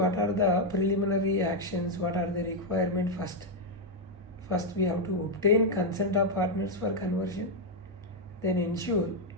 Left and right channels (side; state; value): both; normal; correlation 0.00